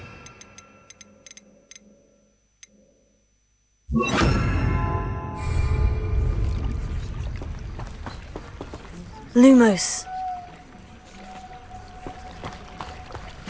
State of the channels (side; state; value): both; identical; correlation 1.00